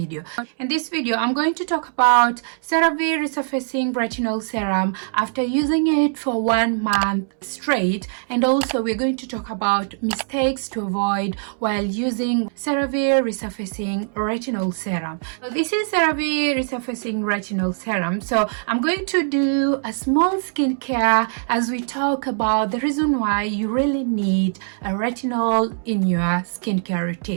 In this video, I'm going to talk about Cerave Resurfacing Retinol Serum after using it for 1 month straight, and also we're going to talk about mistakes to avoid while using Cerave Resurfacing Retinol Serum. So this is Cerave Resurfacing Retinol Serum. So I'm going to do a small skincare as we talk about the reason why you really need a retinol in your skincare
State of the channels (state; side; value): silent; left; 64 dB below the other